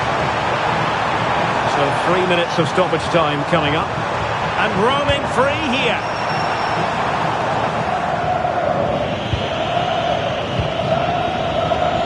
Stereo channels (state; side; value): identical; both; correlation 1.00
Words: So 3 minutes of stoppage time coming up. And roaming free here.